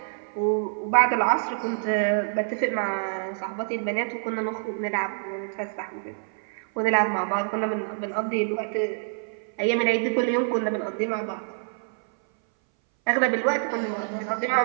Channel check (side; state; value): left; silent; 59 dB below the other